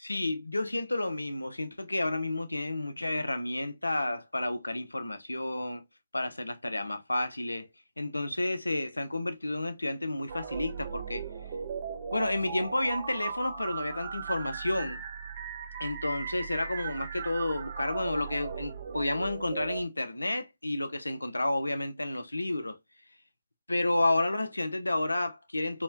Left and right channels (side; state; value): both; inverted; correlation -0.92